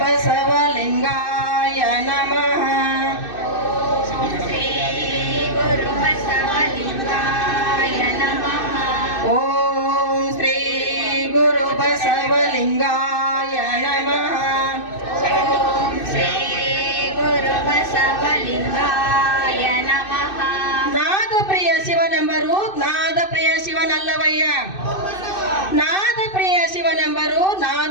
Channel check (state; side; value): late; right; 2.6 ms